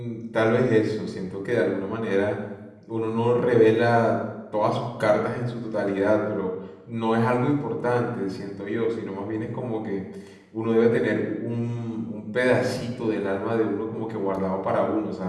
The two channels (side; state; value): both; identical; correlation 1.00